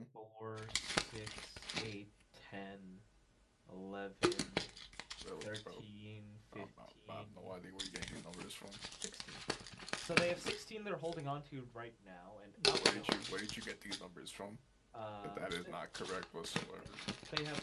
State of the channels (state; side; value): identical; both; correlation 1.00